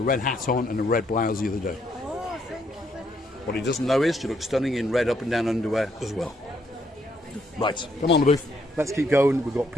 a red hat on and a red blouse the other day. Oh, thank you very much. What he doesn't know is you look stunning in red up and down underwear as well. Right, come on the booth. Let's keep going. We've got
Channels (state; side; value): normal; both; correlation 0.72